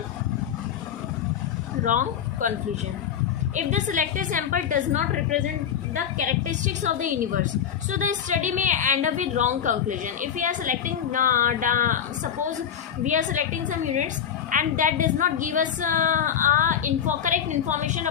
Wrong conclusion. If the selected sample does not represent the characteristics of the universe, so the study may end up with wrong conclusion. If we are selecting, suppose we are selecting some units and that does not give us correct information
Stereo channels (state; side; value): quieter; right; 8.7 dB